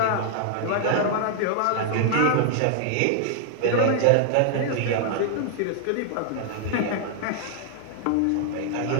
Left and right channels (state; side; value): different; both; correlation -0.01